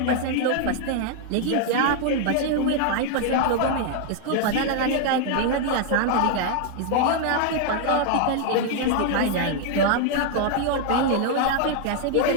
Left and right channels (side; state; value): both; different; correlation 0.00